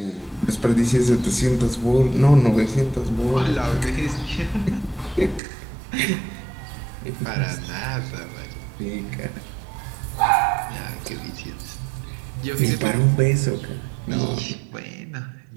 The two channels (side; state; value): left; drops out; at 5.4 s